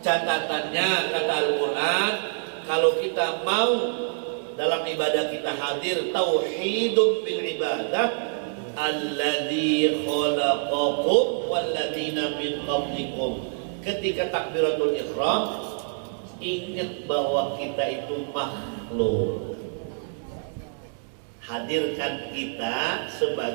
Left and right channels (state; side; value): silent; left; digital silence